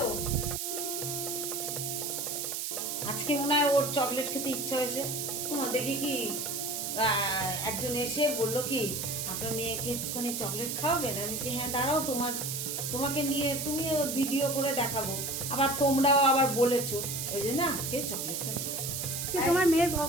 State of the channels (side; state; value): right; noise; hiss, 3 dB below the sound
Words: আজকে মনে হয় ওর চকলেট খেতে ইচ্ছা হয়েছে। দেখি কি একজন এসে বললো কি আপনার মেয়েকে একটুখানি চকলেট খাওয়াবেন। আমি বলছি হ্যাঁ দাঁড়াও, তোমাকে নিয়ে তুমিও ভিডিও করে দেখাবো। আবার তোমরাও আবার বলেছো, ওই জন্য আজকে চকলেটটা তোমার মেয়ের